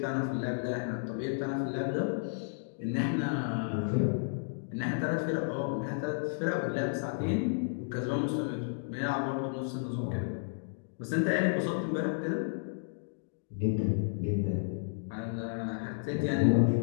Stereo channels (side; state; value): right; silent; digital silence